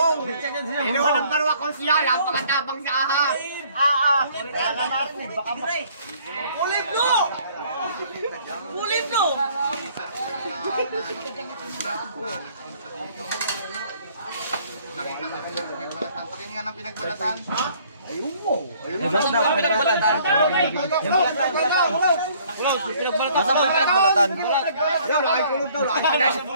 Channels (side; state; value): both; inverted; correlation -0.59